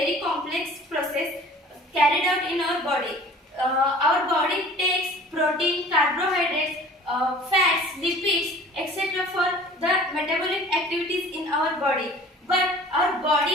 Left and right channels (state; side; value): normal; both; correlation 0.46